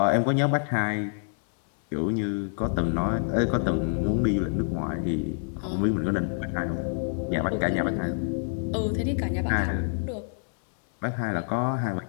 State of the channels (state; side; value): silent; right; 59 dB below the other